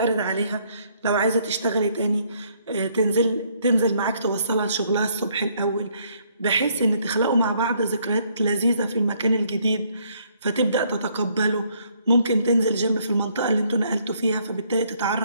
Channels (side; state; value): both; inverted; correlation -0.67